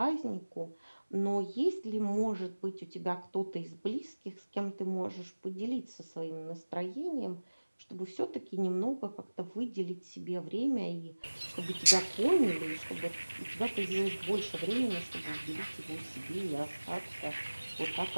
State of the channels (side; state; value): both; inverted; correlation -1.00